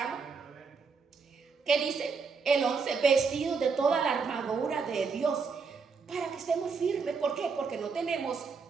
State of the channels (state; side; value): quieter; left; 5.1 dB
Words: que dice el 11, vestidos de toda la armadura de Dios, para que estemos firmes. ¿Por qué? Porque no tenemos,